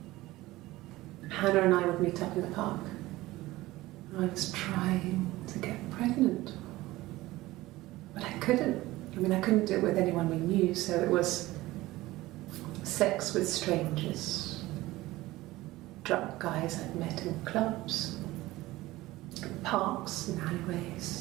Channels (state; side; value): quieter; left; 18.2 dB